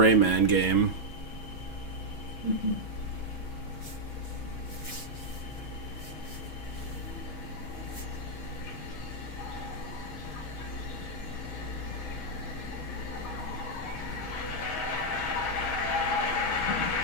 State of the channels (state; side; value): late; right; 6.2 ms